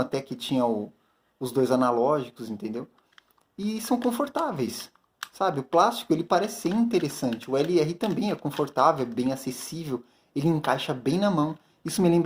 que tinha os dois analógicos, entendeu? E são confortáveis, sabe? O plástico ele parece ser interessante. O LR também é confortável, é bem acessível, ele encaixa bem na mão. Isso me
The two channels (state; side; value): identical; both; correlation 1.00